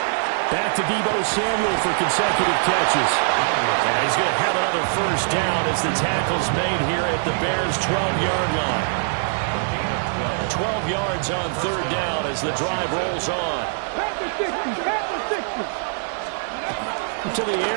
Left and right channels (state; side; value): silent; left; digital silence